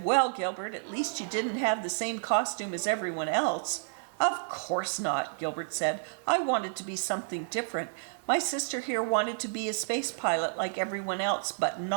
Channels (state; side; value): silent; left; digital silence